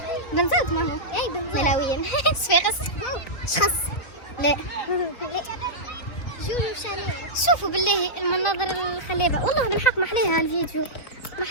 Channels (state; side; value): late; right; 3.9 ms